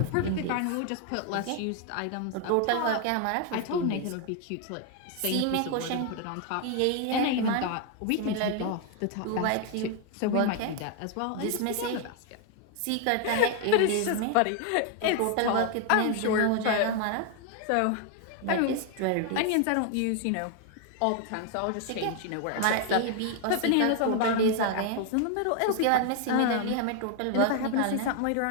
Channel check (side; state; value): both; different; correlation 0.00